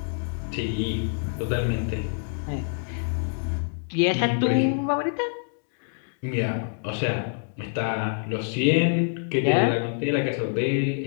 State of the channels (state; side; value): silent; right; digital silence